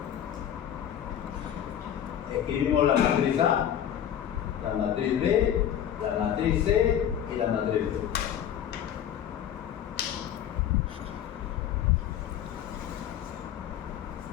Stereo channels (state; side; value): quieter; right; 10.1 dB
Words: escribimos la matriz A, la matriz B, la matriz C y la matriz D.